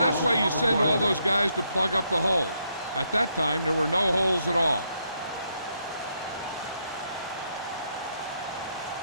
that's why you send all those guys to plug up the holes. At that time, there were no holes at all.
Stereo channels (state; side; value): inverted; both; correlation -0.77